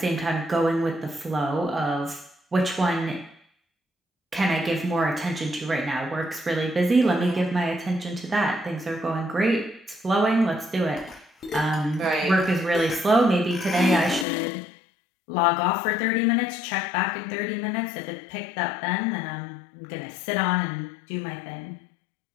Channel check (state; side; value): drops out; right; at 14.2 s